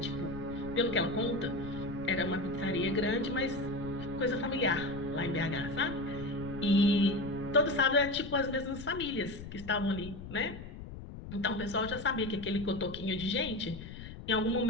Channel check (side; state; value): left; noise; rumble, 12 dB below the sound